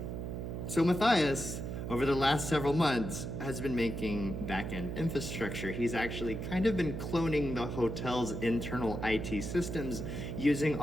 So Matthias, over the last several months, has been making back-end infrastructure. He's actually kind of been cloning the hotel's internal IT systems, using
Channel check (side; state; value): right; noise; hum, 5 dB below the sound